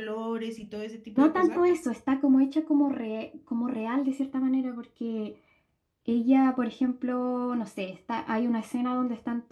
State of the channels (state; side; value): identical; both; correlation 1.00